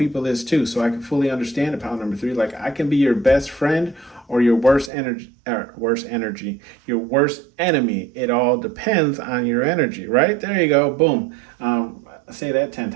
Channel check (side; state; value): left; drops out; at 4.9 s